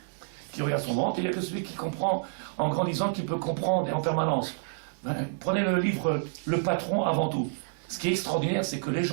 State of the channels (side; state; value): left; silent; digital silence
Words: qui regarde son ventre, et il n'y a que celui qui comprend en grandissant, qui peut comprendre et en permanence. Prenez le livre Le Patron avant tout. Ce qui est extraordinaire, c'est que les